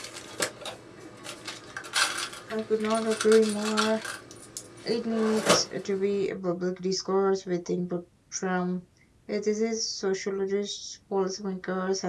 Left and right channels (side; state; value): both; identical; correlation 1.00